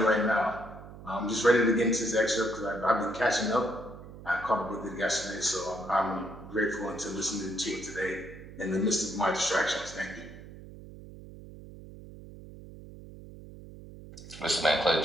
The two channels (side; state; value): right; noise; hum, 16 dB below the sound